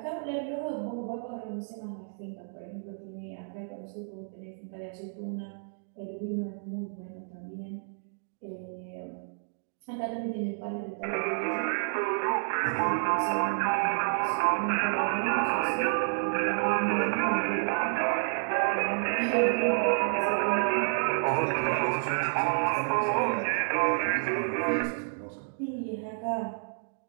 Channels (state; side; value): silent; left; digital silence